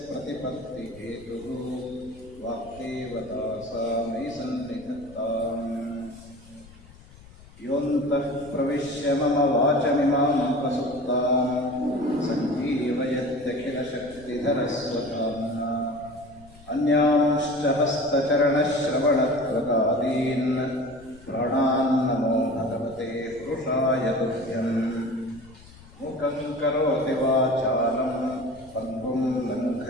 प्रतिपत्तिहेतुः वाक्देवता सा मयि सन्निधत्ताम्। योऽन्तः प्रविश्य मम वाचमिमामुपसुप्तां सञ्जीवयत्यखिलशक्तिधरस्वधाम्ना अन्यांश्च हस्तचरणश्रवणत्वकादीन् प्राणान्नमो भगवते पुरुषाय तुभ्यम्। मुखं करोति वाचालं पङ्गुं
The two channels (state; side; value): noise; left; rumble, 22 dB below the sound